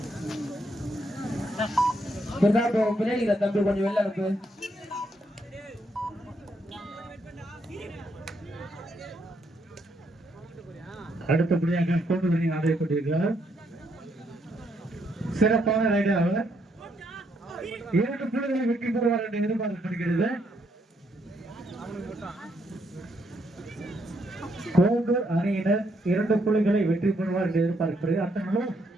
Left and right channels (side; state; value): both; normal; correlation 0.75